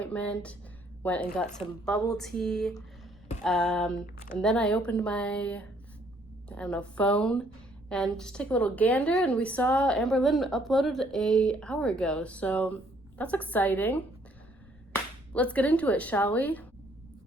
went and got some bubble tea. And then I opened my, phone and just took a little gander, and we saw AmberLynn uploaded an hour ago. So that's exciting. Let's get into it, shall we?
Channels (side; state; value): left; noise; rumble, 26 dB below the sound